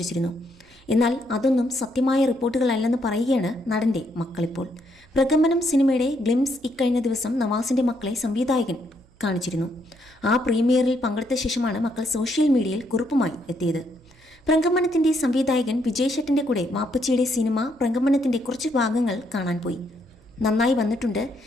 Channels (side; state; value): right; noise; hum, 30 dB below the sound